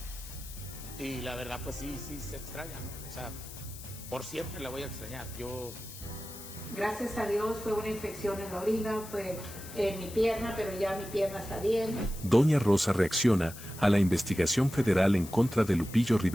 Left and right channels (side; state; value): left; noise; hiss, 14 dB below the sound